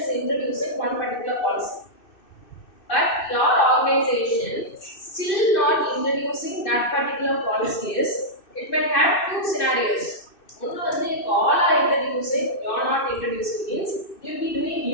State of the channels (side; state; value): right; late; 2.6 ms